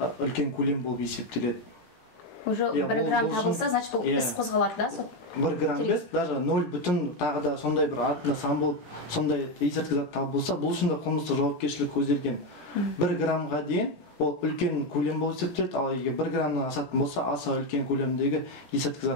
көлем болып есептеледі. Уже 1 грамм табылса, значит бұл іс қозғалады да сот? 1 грамм емес, даже 0 бүтін тағы да сондай бір артында сан болып, сондай есірткі зат табылса, бұл үшін де қылмыстық жауапкершілік көзделген. 1 граммға дейін ол үлкен көлем болып есептеледі, ал егер 1 граммнан асатын болса, аса үлкен көлемдегі есірткі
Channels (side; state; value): right; late; 18 ms